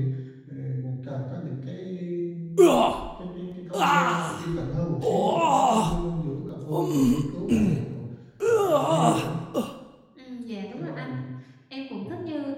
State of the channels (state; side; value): identical; both; correlation 1.00